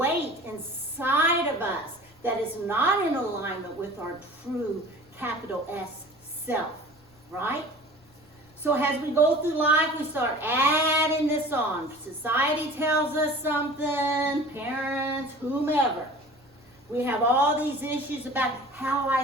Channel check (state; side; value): noise; left; rumble, 30 dB below the sound